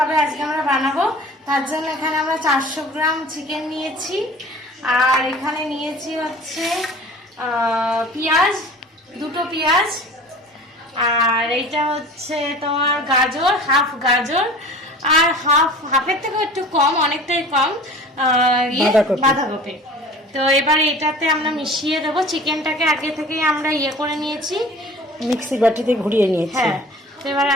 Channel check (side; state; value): both; normal; correlation 0.43